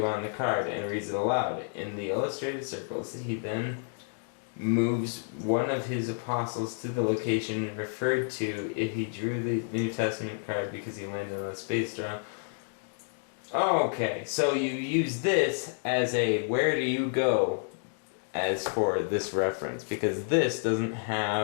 on the card, and reads it aloud. In the illustrated circles, he then moves one of his apostles to the location referred to if he drew the New Testament card because he landed on a space throne. Okay, so you use this as a where do you go as for this reference, because this doesn't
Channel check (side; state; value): right; silent; digital silence